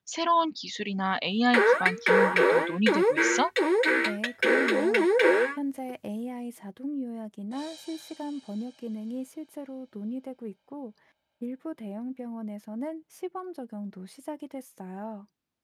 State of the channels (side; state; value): both; identical; correlation 1.00